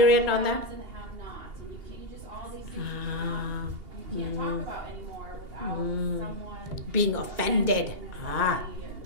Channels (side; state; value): left; late; 2.2 ms